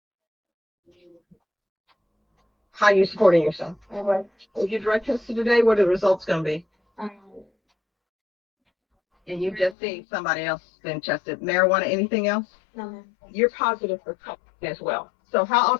How are you supporting yourself? If you drug tested today, what are the results going to be? Um, and you just seen somebody else been tested. Marijuana, anything else? No. You're positive for cocaine as well. So how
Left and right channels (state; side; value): drops out; right; at 9.8 s